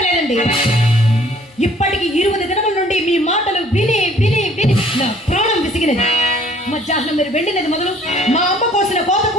ఇప్పటికి 20 దినముల నుండి మీ మాటలు విని విని విని నా ప్రాణం విసిగినది. మధ్యాహ్నం మీరు వెళ్ళినది మొదలు మా అమ్మ కోసిన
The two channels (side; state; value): both; normal; correlation 0.56